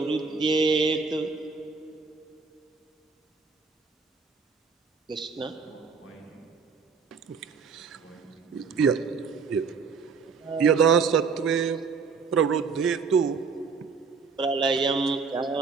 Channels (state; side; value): quieter; left; 5.3 dB